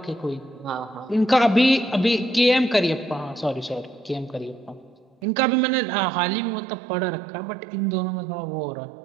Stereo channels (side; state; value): left; drops out; at 5.2 s